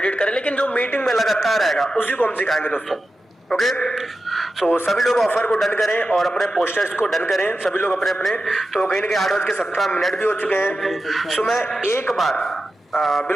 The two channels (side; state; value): both; normal; correlation 0.91